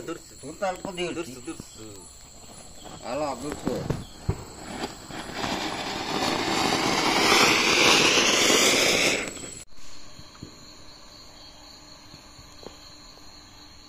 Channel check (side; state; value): both; identical; correlation 1.00